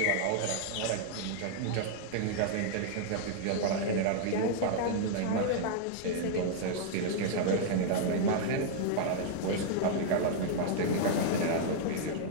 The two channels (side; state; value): both; different; correlation -0.01